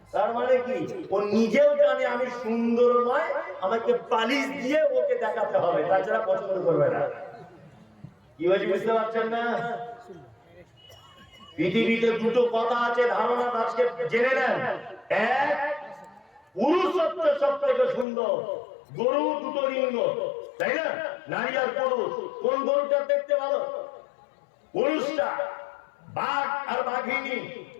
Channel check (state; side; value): drops out; right; at 18.1 s